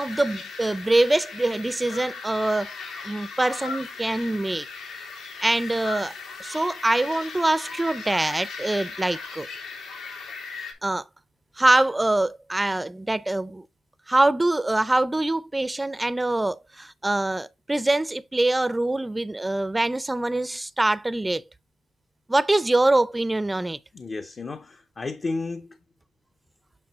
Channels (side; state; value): both; normal; correlation 0.98